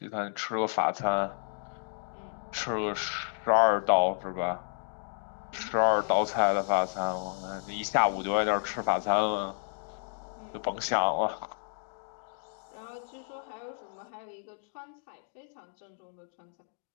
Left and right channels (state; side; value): silent; right; digital silence